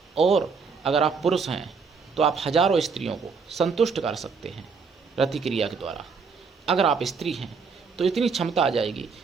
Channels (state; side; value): quieter; left; 5.2 dB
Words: और अगर आप पुरुष हैं तो आप हजारों स्त्रियों को संतुष्ट कर सकते हैं रति क्रिया के द्वारा। अगर आप स्त्री हैं तो इतनी क्षमता आ जाएगी